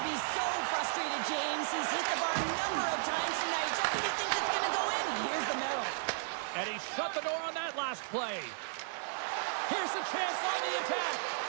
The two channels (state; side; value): silent; left; digital silence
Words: be so frustrated, James. He's hit the bar a number of times tonight. Just when he thinks it's going to go in, here's the medal. And he shut the door on that last play. Here's a chance on the attack.